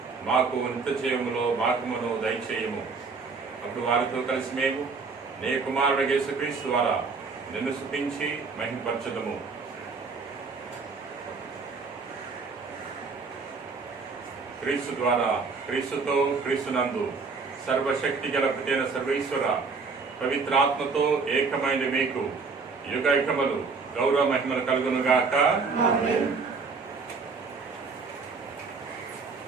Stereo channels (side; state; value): left; quieter; 4.6 dB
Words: మాకు నిత్య జీవములో భాగమును దయచేయము. అప్పుడు వారితో కలిసి మేము నీ కుమారుడు యేసుక్రీస్తు ద్వారా నిన్ను స్తుతించి మహిమపరచదము. క్రీస్తు ద్వారా, క్రీస్తుతో, క్రీస్తునందు సర్వశక్తి గల ప్రతైన సర్వేశ్వర పవిత్రాత్మతో ఏకమైన మీకు యుగయుగములు గౌరవ మహిమలు కలుగునుగాక.